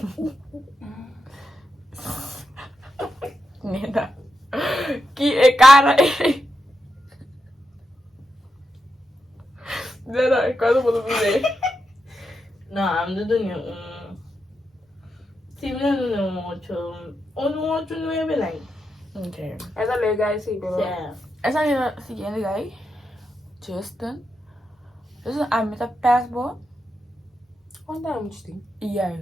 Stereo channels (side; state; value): both; normal; correlation 0.86